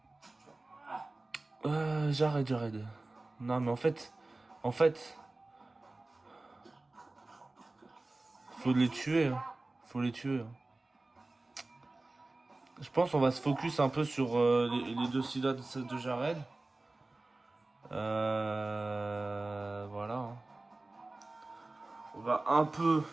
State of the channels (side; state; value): left; quieter; 3.0 dB